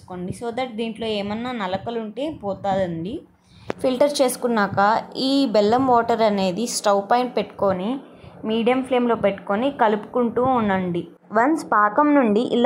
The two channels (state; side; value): identical; both; correlation 1.00